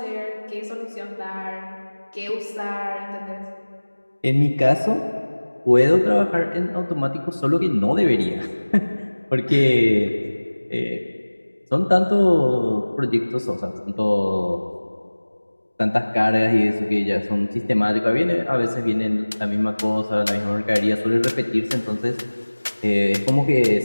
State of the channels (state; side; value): inverted; both; correlation -1.00